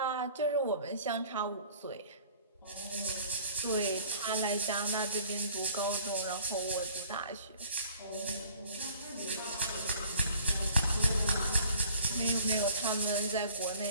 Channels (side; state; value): both; inverted; correlation -0.51